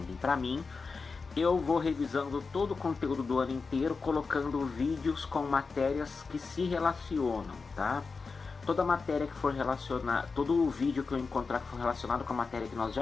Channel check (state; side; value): quieter; right; 4.6 dB